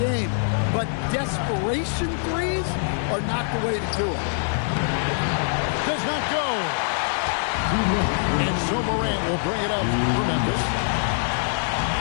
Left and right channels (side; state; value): right; silent; 61 dB below the other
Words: but desperation threes are not the way to do it. Does not go. And so Morant will bring it up for Memphis.